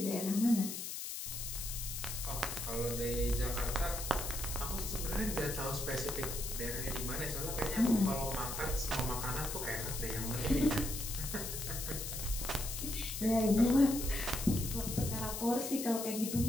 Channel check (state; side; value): noise; left; hiss, 5 dB below the sound